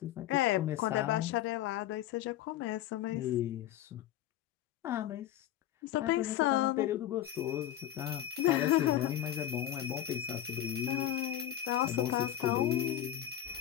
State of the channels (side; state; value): right; quieter; 12.1 dB